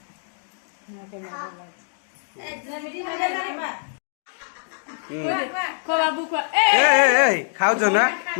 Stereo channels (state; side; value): silent; right; digital silence